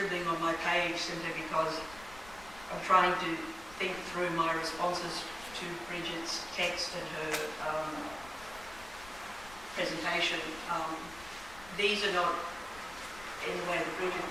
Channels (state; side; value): noise; left; rumble, 18 dB below the sound